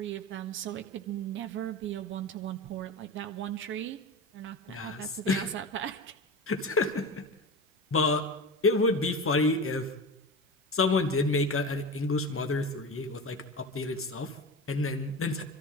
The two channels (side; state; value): both; normal; correlation 0.27